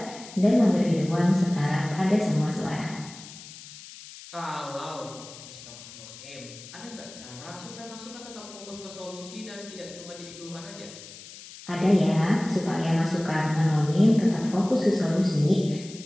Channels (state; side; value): noise; left; hiss, 16 dB below the sound